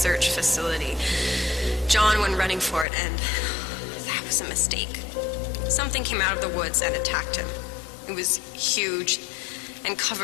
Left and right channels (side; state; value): right; drops out; at 2.9 s